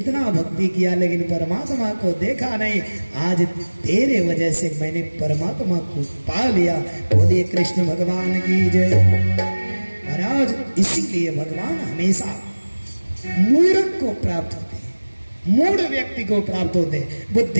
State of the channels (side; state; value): both; inverted; correlation -1.00